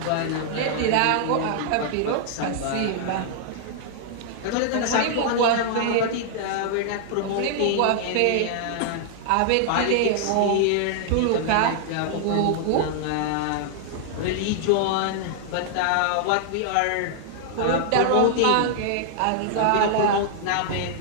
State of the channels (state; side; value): different; both; correlation -0.01